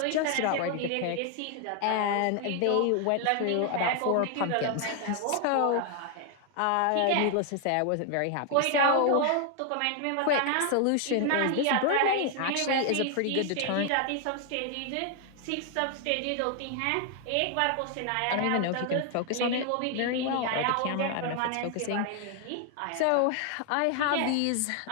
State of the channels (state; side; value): different; both; correlation 0.00